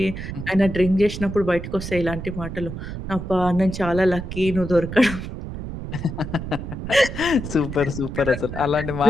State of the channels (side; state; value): right; noise; rumble, 7 dB below the sound